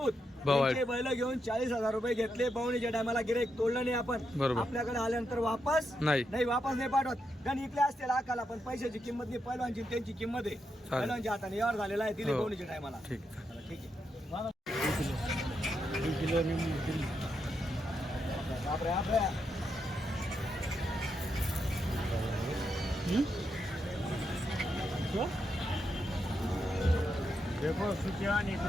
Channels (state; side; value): normal; both; correlation 0.83